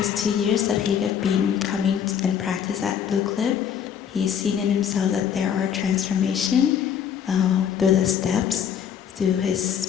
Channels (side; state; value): right; quieter; 8.4 dB